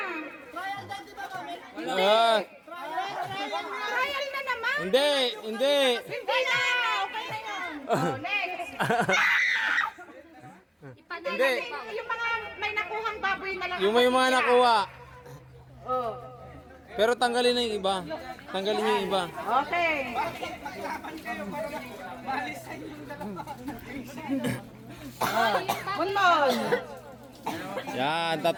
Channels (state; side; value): identical; both; correlation 1.00